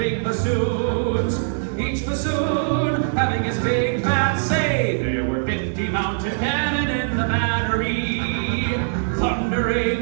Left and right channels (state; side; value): silent; left; 57 dB below the other